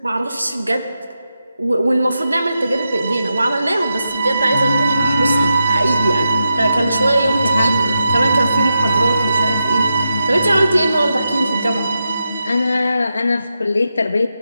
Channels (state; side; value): inverted; both; correlation -0.87